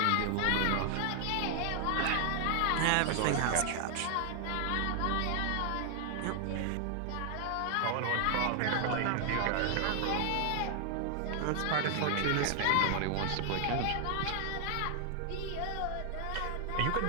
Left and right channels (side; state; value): both; different; correlation 0.00